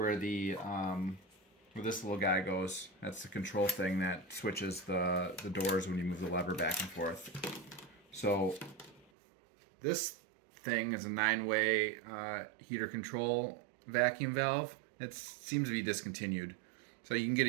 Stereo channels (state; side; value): drops out; left; at 9.1 s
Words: the where this little guy goes. That's the control thing that switches the doors when you move the lever back and forth. So this thing is a 9-way heater control vacuum valve. It seems to be discontinued. So you can get